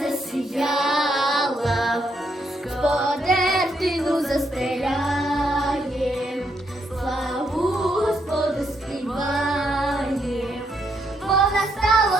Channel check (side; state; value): both; normal; correlation 0.76